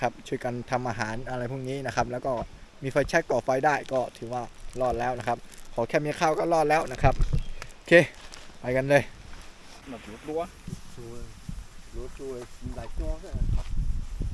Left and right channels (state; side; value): identical; both; correlation 1.00